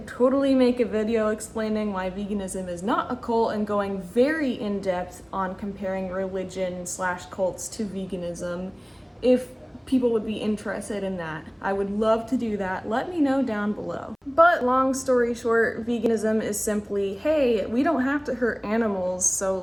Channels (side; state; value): both; identical; correlation 1.00